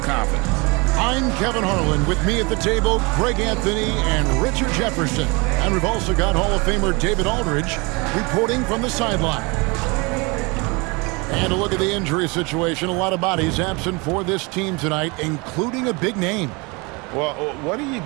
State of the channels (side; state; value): left; quieter; 27.9 dB